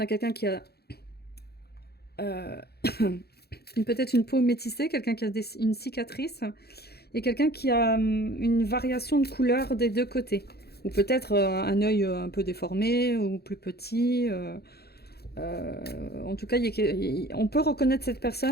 a quelqu'un qui a... peut-être une peau métissée, quelqu'un qui a une cicatrice, et quelqu'un qui a une variation de couleur des deux côtés. Ou peut-être un œil un peu déformé, ou plus petit. En tout cas, on peut reconnaître cette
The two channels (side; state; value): right; late; 0.46 ms